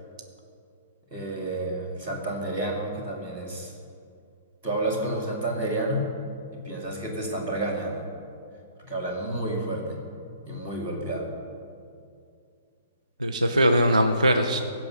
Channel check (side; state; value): both; inverted; correlation -0.59